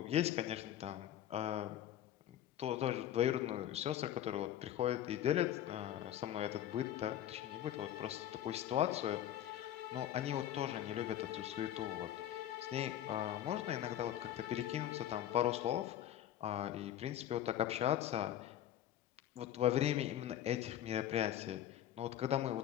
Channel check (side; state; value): right; quieter; 11.7 dB